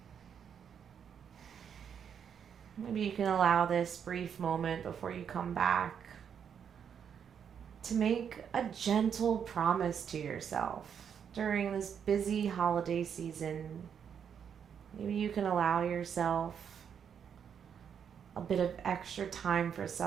Maybe you can allow this brief moment before you come back to make a gentle promise to yourself during this busy holiday season. Maybe you can allow yourself a bit of extra time for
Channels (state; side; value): quieter; left; 7.8 dB